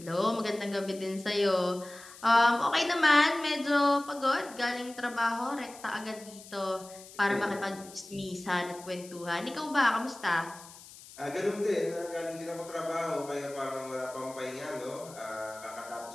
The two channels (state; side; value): noise; left; hiss, 18 dB below the sound